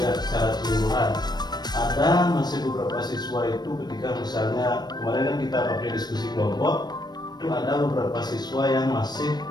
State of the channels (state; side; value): late; right; 0.20 ms